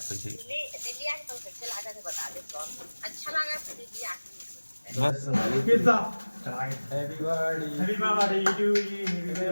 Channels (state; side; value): inverted; both; correlation -1.00